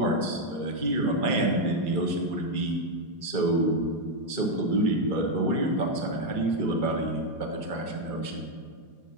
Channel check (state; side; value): late; right; 4.9 ms